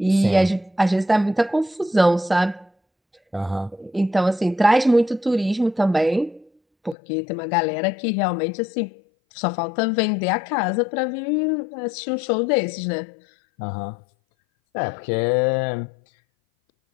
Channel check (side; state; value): right; drops out; at 7.0 s